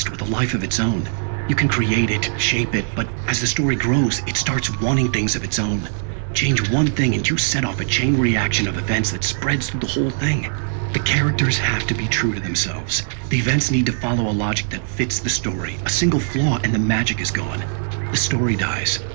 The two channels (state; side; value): silent; left; digital silence